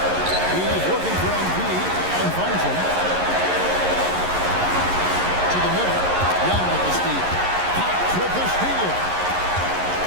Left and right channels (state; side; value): late; left; 11 ms